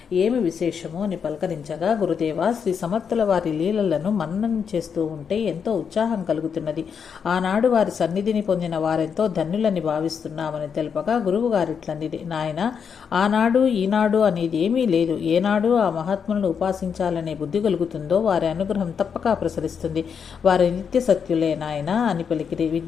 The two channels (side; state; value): right; quieter; 6.8 dB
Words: ఏమి విశేషమో అని పలకరించగా, గురుదేవ, శ్రీ సమర్థుల వారి లీలలను మననం చేస్తూ ఉంటే ఎంతో ఉత్సాహం కలుగుతున్నది. ఆనాడు వారి సన్నిధిని పొందిన వారెంతో ధన్యులని భావిస్తున్నామని తెలుపగా, గురువు గారిట్లనిది, నాయన, ఆనాడు ఈనాడు అనేది ఏమీ లేదు. ఏనాడు ఆ మహాత్ములను ఉపాసించాలనే బుద్ధి కలుగుతుందో వారి అనుగ్రహం తప్పక ప్రసరిస్తుంది. వారి నిత్య సత్యులే నాయన అని పలికిరి.